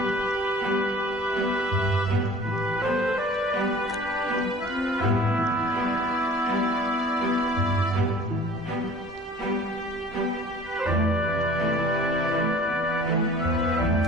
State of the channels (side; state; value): both; normal; correlation 0.47